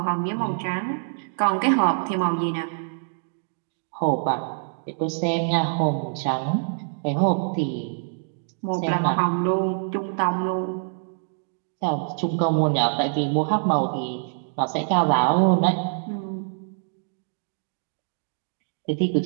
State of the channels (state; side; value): silent; left; digital silence